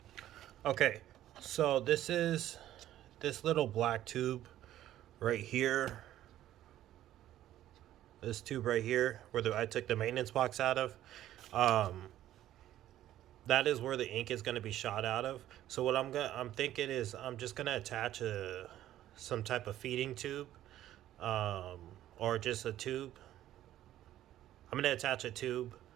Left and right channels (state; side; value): quieter; left; 12.9 dB